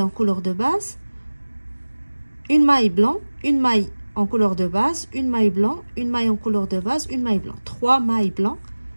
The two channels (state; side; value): inverted; both; correlation -1.00